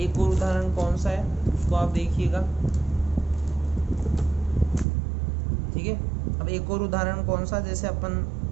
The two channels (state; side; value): drops out; left; at 4.9 s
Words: और उदाहरण कौन सा है उसको आप देखिएगा। ठीक है, अब एक और उदाहरण कौन सा, जैसे